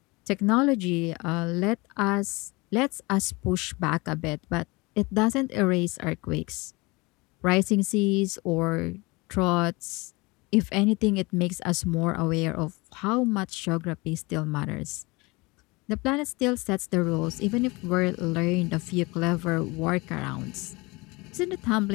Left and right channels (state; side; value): quieter; right; 24.8 dB